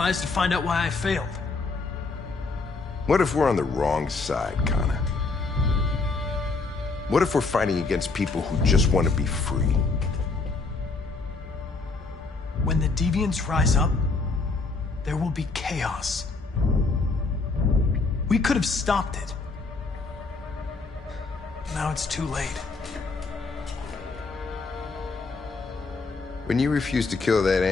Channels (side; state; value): right; quieter; 3.9 dB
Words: to find out why I failed. What if we're on the wrong side, Connor? What if we're fighting against people who just want to be free? When the deviants rise up, there will be chaos. We could have stopped it. Now it's too late. When you refused to kill that